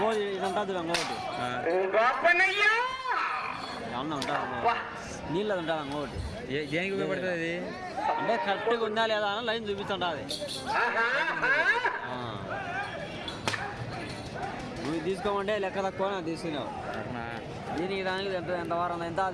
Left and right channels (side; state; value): both; identical; correlation 1.00